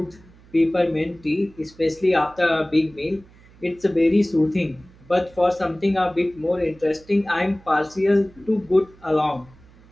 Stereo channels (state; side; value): noise; right; hum, 26 dB below the sound